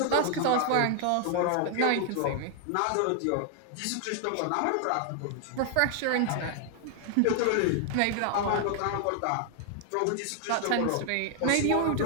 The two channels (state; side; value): different; both; correlation 0.00